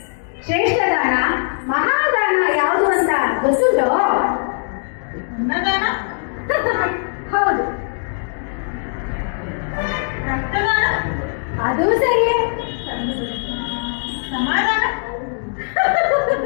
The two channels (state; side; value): silent; right; 66 dB below the other